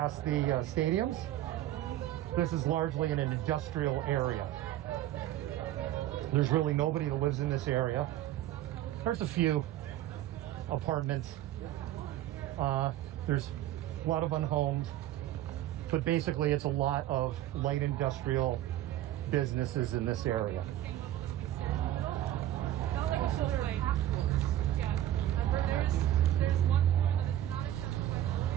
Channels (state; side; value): quieter; left; 13.3 dB